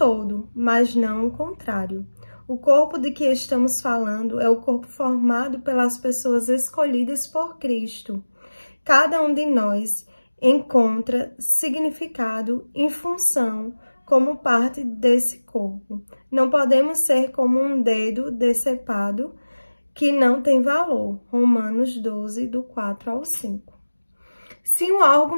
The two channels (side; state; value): both; inverted; correlation -1.00